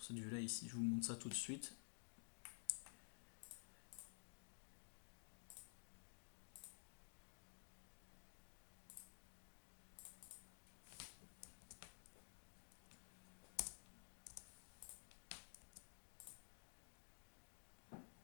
cette vue-là ici. Je vous montre ça tout de suite.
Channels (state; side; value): silent; right; digital silence